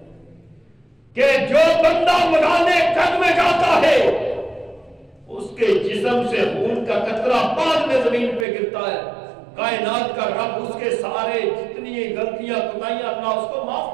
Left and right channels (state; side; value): drops out; left; at 8.5 s